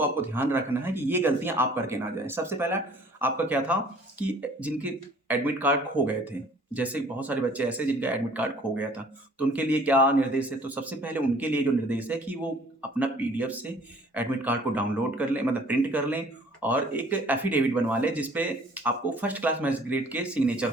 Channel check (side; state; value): both; normal; correlation 0.54